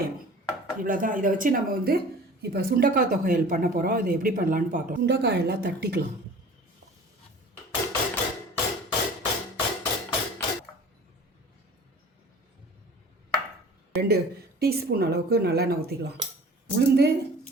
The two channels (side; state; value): both; normal; correlation 0.44